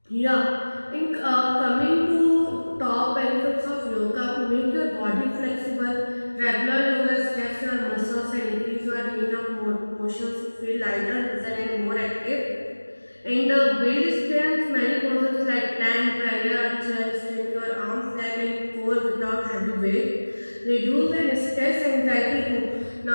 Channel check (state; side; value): inverted; both; correlation -1.00